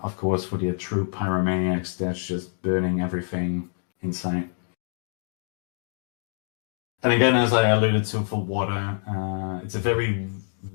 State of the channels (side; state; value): right; silent; digital silence